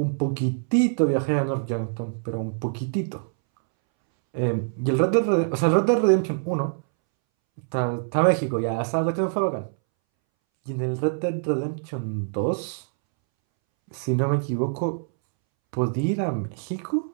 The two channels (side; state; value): left; silent; 62 dB below the other